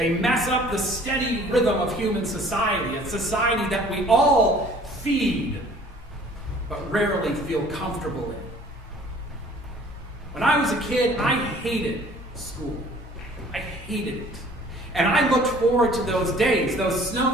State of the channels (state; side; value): normal; both; correlation 0.52